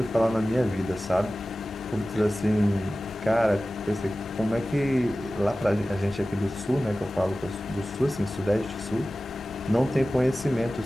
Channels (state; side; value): normal; both; correlation 0.96